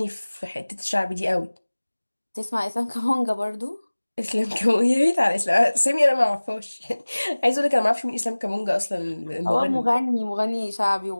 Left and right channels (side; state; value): both; inverted; correlation -1.00